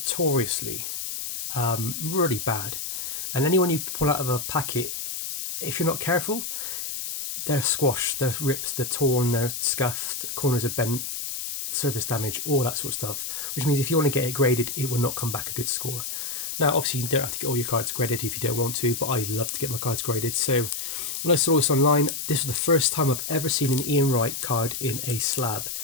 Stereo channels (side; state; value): left; noise; hiss, 5 dB below the sound